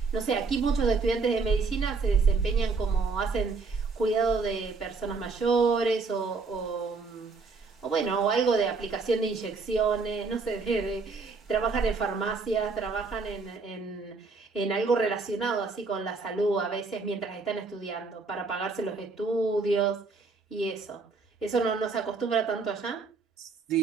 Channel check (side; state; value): left; quieter; 4.3 dB